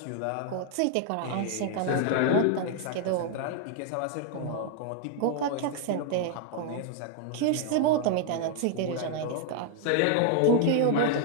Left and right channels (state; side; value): different; both; correlation 0.00